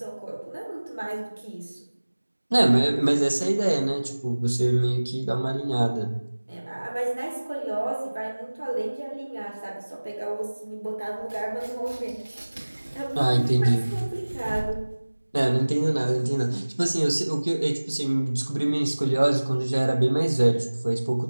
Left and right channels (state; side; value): inverted; both; correlation -1.00